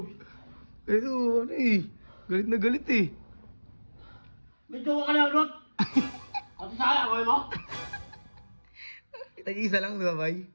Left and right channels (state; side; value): inverted; both; correlation -1.00